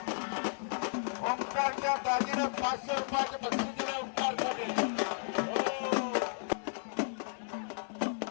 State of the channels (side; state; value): right; silent; 55 dB below the other